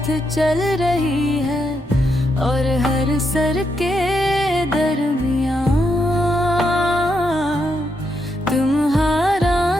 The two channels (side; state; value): both; normal; correlation 0.81